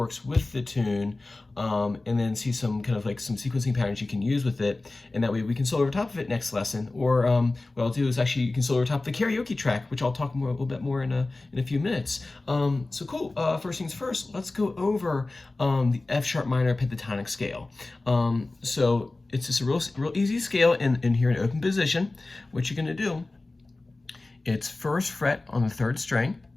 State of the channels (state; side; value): quieter; right; 3.1 dB